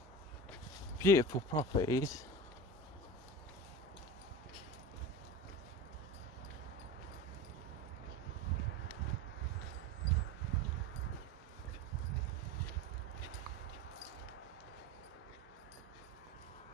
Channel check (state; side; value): normal; both; correlation 0.30